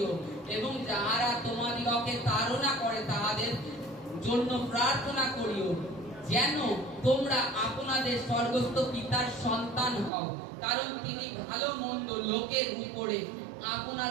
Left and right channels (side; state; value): left; drops out; at 10.1 s